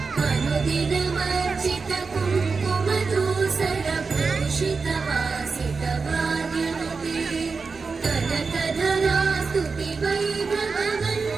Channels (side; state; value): left; quieter; 4.6 dB